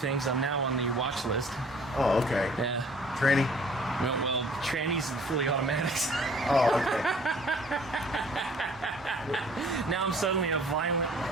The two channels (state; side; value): normal; both; correlation 0.53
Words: I'm now on the watch list. Oh, okay. Yeah. Tranny? Well, trannies and fully automatics. Oh, okay. Now I'm suddenly a violent,